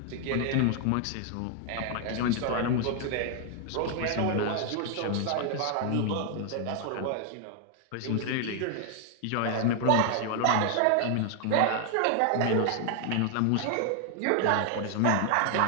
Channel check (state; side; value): different; both; correlation 0.00